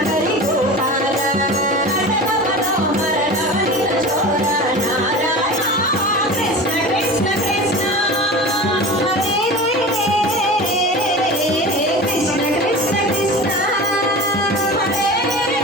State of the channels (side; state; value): both; normal; correlation 0.32